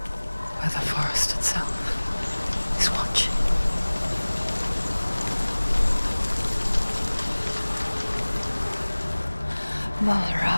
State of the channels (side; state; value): both; inverted; correlation -1.00